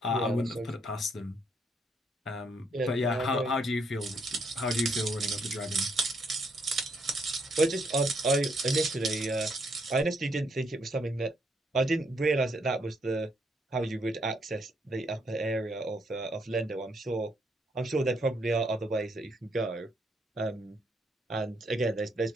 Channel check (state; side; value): normal; both; correlation 0.74